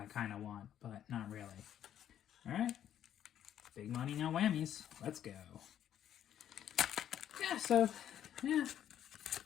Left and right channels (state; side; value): quieter; right; 10.4 dB